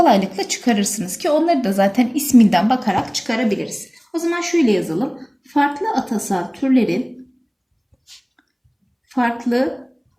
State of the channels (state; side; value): identical; both; correlation 1.00